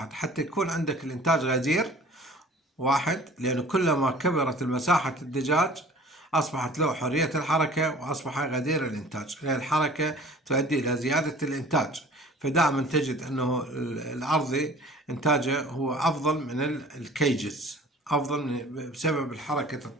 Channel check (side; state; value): both; normal; correlation 0.47